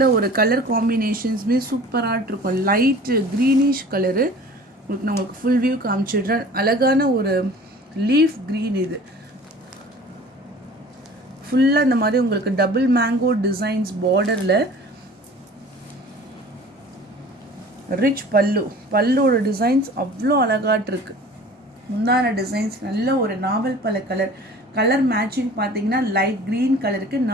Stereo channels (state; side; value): normal; both; correlation 0.44